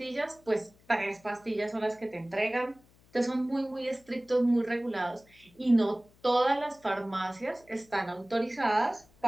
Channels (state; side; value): noise; left; hum, 30 dB below the sound